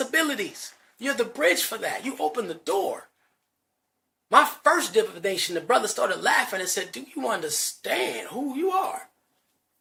abilities. You're the bridge for that. You open the door. My first divination, the brother started laughing and said, "Do you understand who you are?"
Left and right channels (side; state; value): both; identical; correlation 1.00